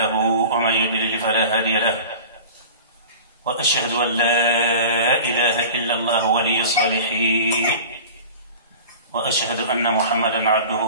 ومن يضلل فلا هادي له، وأشهد أن لا إله إلا الله ولي الصالحين، وأشهد أن محمدًا عبده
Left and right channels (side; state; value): both; inverted; correlation -0.37